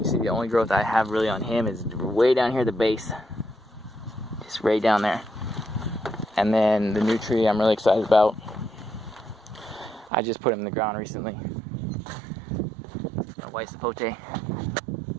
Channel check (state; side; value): drops out; left; at 10.1 s